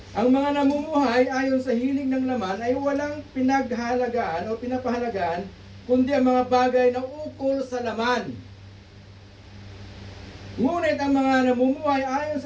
ang mga namumuhay ayon sa hilig ng laman ay walang pinaghalagaan o pinapahalagaan kundi ang mga bagay na ukol sa laman. Ngunit ang mga namumuhay ayon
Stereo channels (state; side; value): identical; both; correlation 1.00